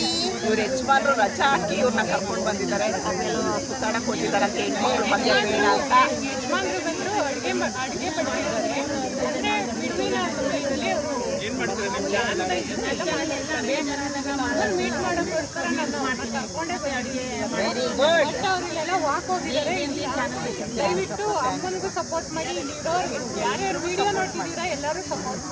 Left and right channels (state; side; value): identical; both; correlation 1.00